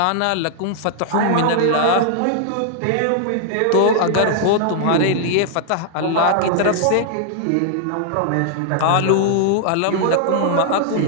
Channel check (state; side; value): different; both; correlation -0.01